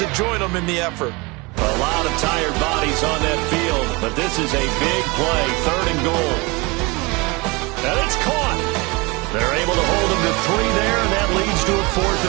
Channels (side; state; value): left; quieter; 25.9 dB